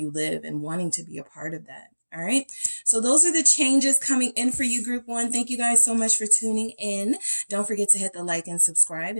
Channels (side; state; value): both; inverted; correlation -1.00